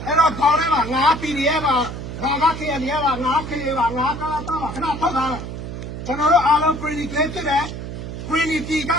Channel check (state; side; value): noise; right; hum, 8 dB below the sound